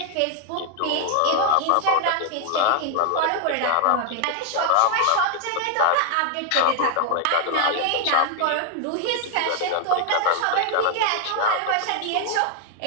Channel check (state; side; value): different; both; correlation 0.00